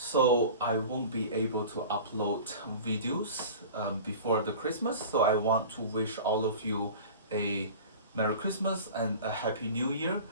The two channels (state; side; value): inverted; both; correlation -0.38